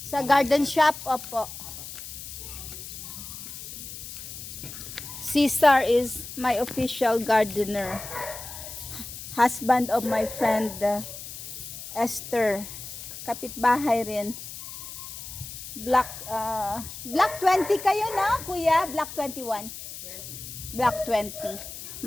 sa garden shop. Opo. Cesar is my official gardener. Husband of my friend Esther. Kapitbahay rin. Black 20 kayo na, kuya? Black 21. Black 20.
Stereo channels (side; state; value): left; noise; hiss, 11 dB below the sound